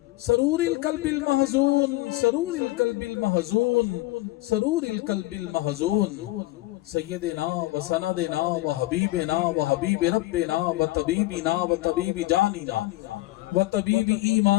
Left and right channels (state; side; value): quieter; right; 18.7 dB